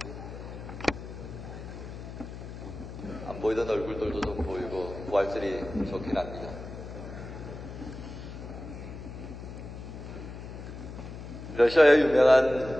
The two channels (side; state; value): left; noise; hum, 11 dB below the sound